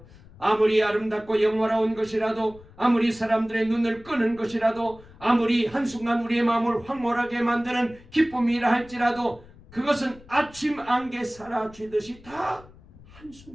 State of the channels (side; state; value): left; noise; rumble, 23 dB below the sound